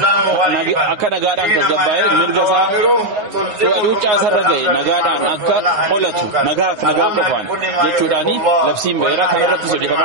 akka nagaadhaan tasgabbaa'ee mirga isaa cuucaasarra ga'e nagaadhaan akka qolatu nagaaf nagaa qofaan jechuudhaan labsiin ba'eera kanarrattis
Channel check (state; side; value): late; left; 9.6 ms